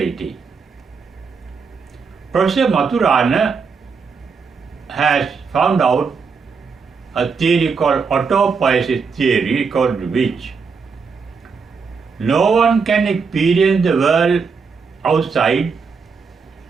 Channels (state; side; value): quieter; left; 5.3 dB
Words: Professor Maturana has found out a theory called autopoesis theory, according to which no one can experience the world outside